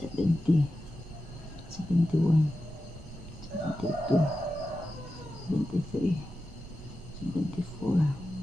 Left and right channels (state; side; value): normal; both; correlation 0.91